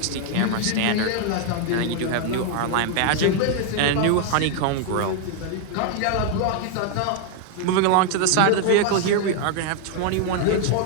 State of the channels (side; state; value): both; different; correlation 0.00